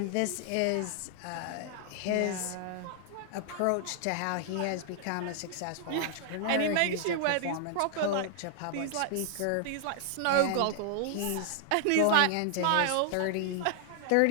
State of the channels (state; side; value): different; both; correlation 0.00